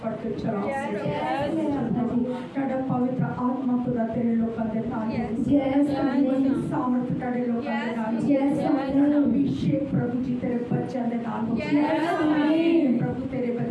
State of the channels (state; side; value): identical; both; correlation 1.00